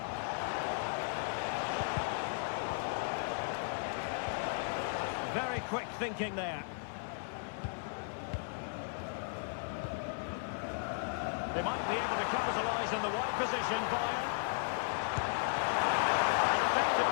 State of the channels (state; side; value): silent; right; 54 dB below the other